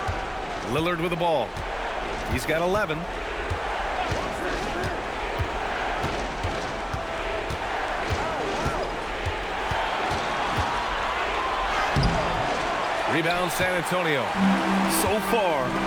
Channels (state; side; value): identical; both; correlation 1.00